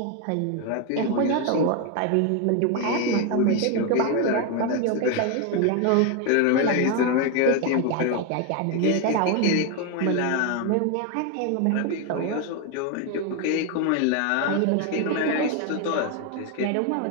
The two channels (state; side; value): different; both; correlation 0.01